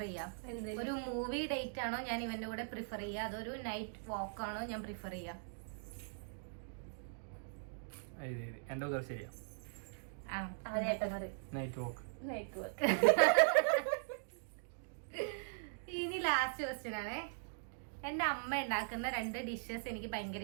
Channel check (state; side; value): silent; left; digital silence